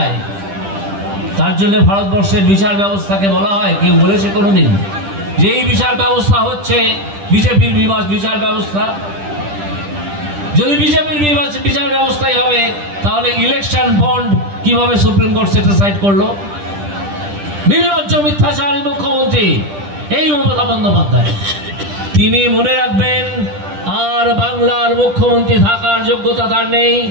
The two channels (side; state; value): left; late; 10 ms